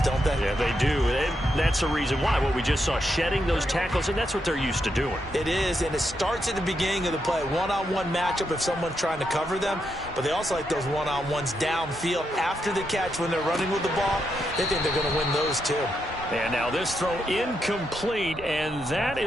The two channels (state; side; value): normal; both; correlation 0.82